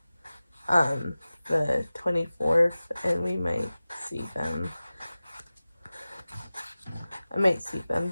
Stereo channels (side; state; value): both; inverted; correlation -0.97